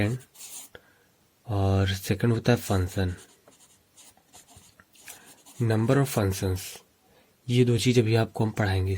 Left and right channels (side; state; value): both; identical; correlation 1.00